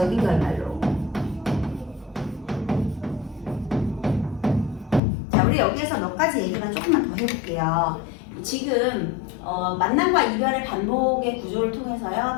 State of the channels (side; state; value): right; drops out; at 5.0 s